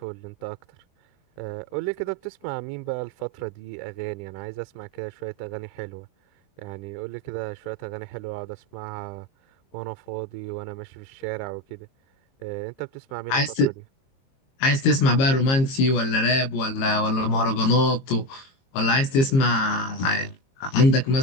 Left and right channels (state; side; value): late; right; 22 ms